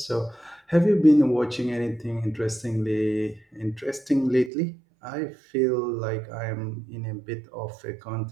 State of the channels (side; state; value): left; drops out; at 4.5 s